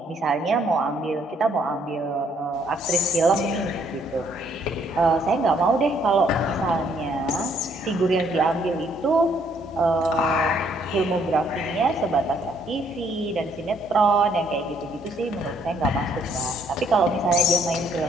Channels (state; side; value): normal; both; correlation 0.67